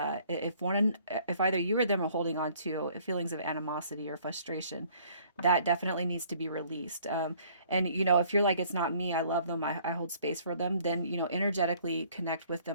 if either you or them are holding on to feelings of animosity or frustration, that definitely needs to be released. And you know, if you're like, it's not me, I love them, I hold space for them, then you know, energetically connect with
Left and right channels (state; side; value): inverted; both; correlation -0.58